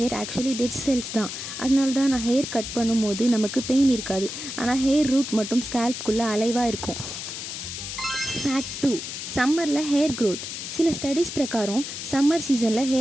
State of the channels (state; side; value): noise; left; hiss, 7 dB below the sound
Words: ஆக்சுவலி டெட் செல்ஸ் தான். அதனால தான் நான் ஹேர் கட் பண்ணும்போது நமக்கு பெயின் இருக்காது, ஆனால் ஹேர் ரூட் மட்டும் ஸ்கேல்ப்புக்குள்ளே அலைவாக இருக்கும். ஃபேக்ட் 2, சம்மரில் ஹேர் க்ரோத். சில ஸ்டடீஸ் பிரகாரம் சம்மர் சீசனில்